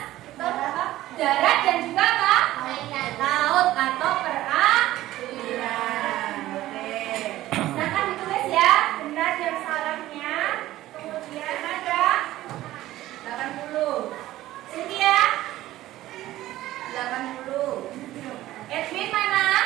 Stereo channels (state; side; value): quieter; left; 15.3 dB